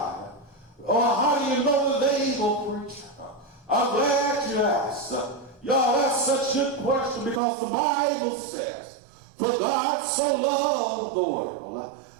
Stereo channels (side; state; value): left; drops out; at 7.4 s